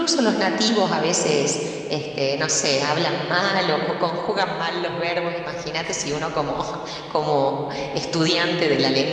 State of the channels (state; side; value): identical; both; correlation 1.00